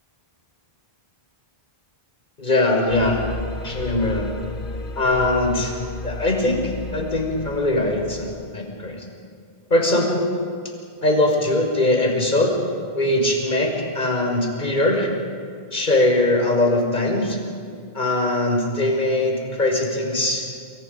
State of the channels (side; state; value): right; late; 2.2 ms